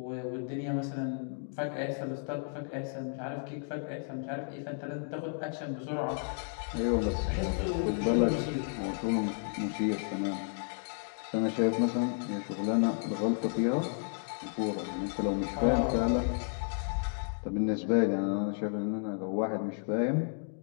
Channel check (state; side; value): silent; right; 56 dB below the other